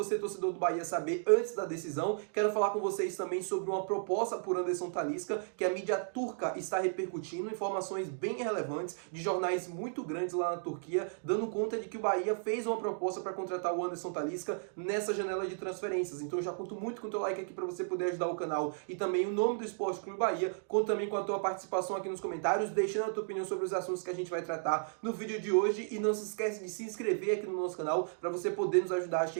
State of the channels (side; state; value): left; silent; digital silence